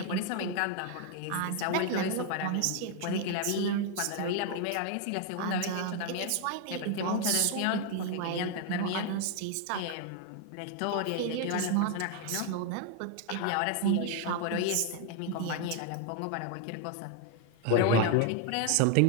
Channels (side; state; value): both; different; correlation 0.01